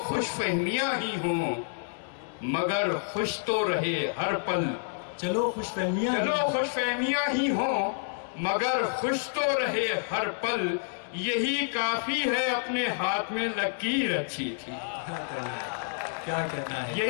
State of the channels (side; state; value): right; silent; digital silence